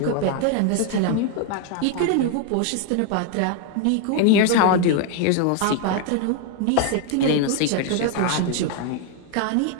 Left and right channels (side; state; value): both; different; correlation 0.01